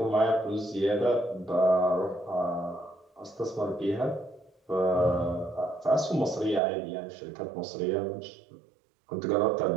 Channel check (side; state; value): left; drops out; at 6.6 s